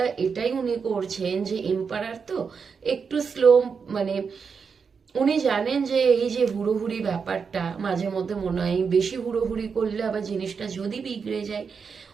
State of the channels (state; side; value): quieter; left; 5.8 dB